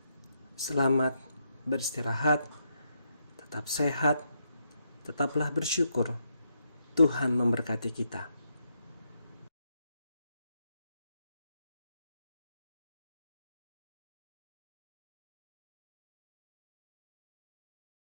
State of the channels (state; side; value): inverted; both; correlation -0.80